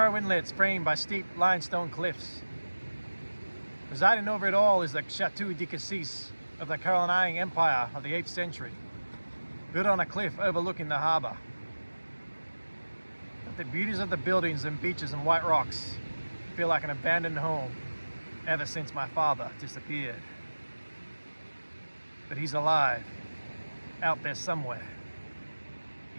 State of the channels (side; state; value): both; inverted; correlation -1.00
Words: inlets framed by steep limestone cliffs. Presiding over it all is the Chateau de Cassis of the Carolingian Empire of the 8th century, built on a cliff overlooking the harbour. But the beauties of the buildings and beaches and white rocks feel like an abandoned home ever since my father disappeared. But he's alive, out there somewhere.